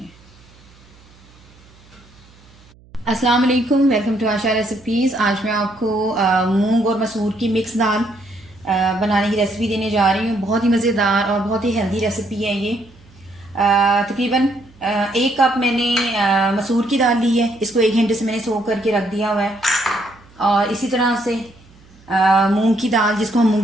है। अस्सलाम वालेकुम, वेलकम टू आशा रेसिपीज़। आज मैं आपको मूंग और मसूर की मिक्स दाल बनाने की रेसिपी देने जा रही हूँ। बहुत ही मज़ेदार और बहुत ही हेल्दी रेसिपी है ये। तकरीबन 1 कप मैंने मसूर की दाल ली है। इसको 1 घंटे से मैंने सोक करके रख दिया हुआ है। और इसी तरह से मूंग की दाल, जिसको हम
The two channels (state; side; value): noise; right; hum, 27 dB below the sound